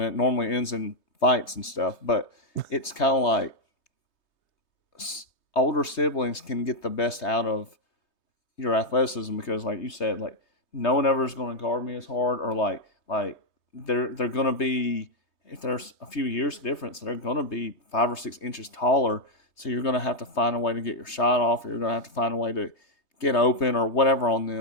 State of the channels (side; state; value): right; late; 3.2 ms